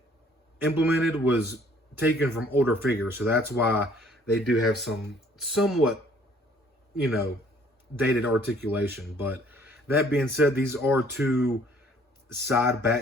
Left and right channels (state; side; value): normal; both; correlation 0.59